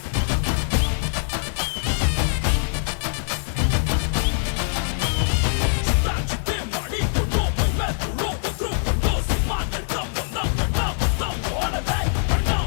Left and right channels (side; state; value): right; silent; 55 dB below the other